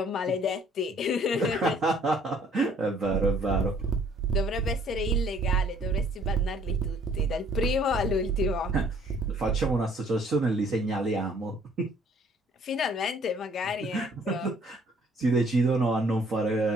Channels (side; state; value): both; normal; correlation 0.60